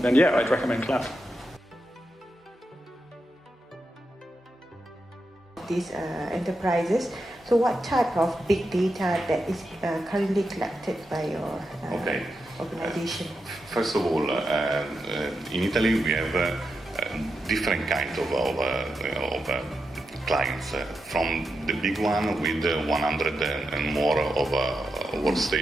yeah, I'd recommend cloud. These enterprises. So what type of big data that is currently collected by your organization? First of all, in Italy we have different kind of clients, from the big one with 100 and more of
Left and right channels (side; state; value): both; normal; correlation 0.87